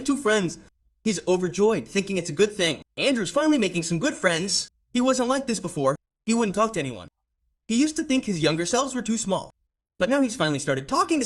two friends. He's overjoyed, thinking it's a good thing. Andrew's finally making some good friends. He wasn't like this before. He wouldn't talk to anyone. He used to think his younger selves were too small. But now he's finally started talking to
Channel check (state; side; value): identical; both; correlation 1.00